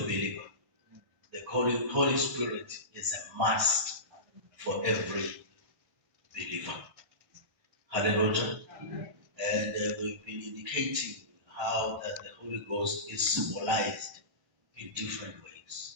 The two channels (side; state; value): left; late; 1.5 ms